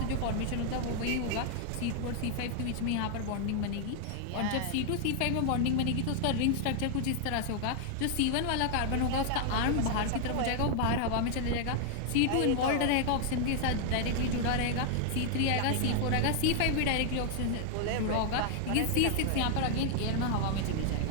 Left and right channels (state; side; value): different; both; correlation 0.00